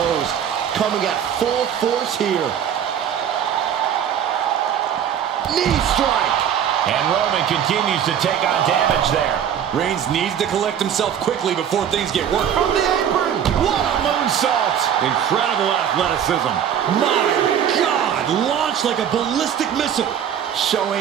coming at full force here. Knee strike. And Roman continues to take on damage there. Reigns needs to collect himself quickly before things get worse. From the apron. What a moonsault. Incredible athleticism. My God, launched like a ballistic missile.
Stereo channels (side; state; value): left; quieter; 9.1 dB